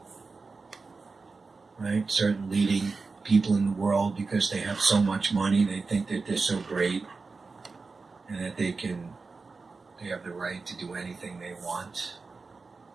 Right? Certain leading people in the world, because they have so much money, they think that they're so great and that they have the right to do anything they want.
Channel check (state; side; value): quieter; left; 4.2 dB